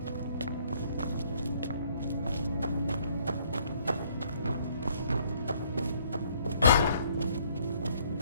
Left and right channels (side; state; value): both; inverted; correlation -0.65